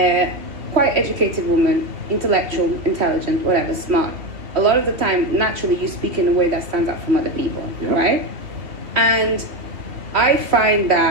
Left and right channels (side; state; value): left; late; 2.5 ms